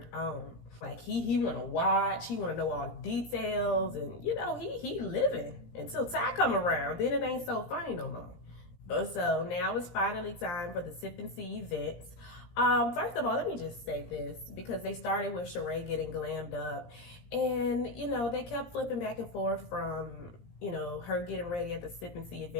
on. Like, he want to watch, he want to know all the details, and, you know, he living until Ty come around. Then it ain't so funny no more. So now it's finally time for the Sip and See events. First of all, let me just say this because they started with Sheree getting glammed up, and they kept flipping back and forth from her getting ready at the Sip and See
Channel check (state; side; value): late; right; 17 ms